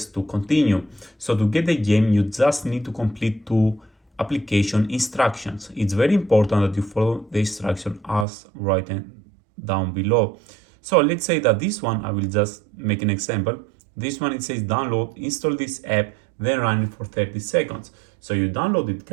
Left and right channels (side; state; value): left; drops out; at 8.2 s